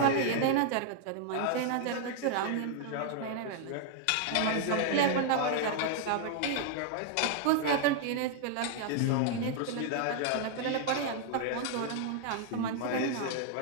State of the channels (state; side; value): different; both; correlation 0.00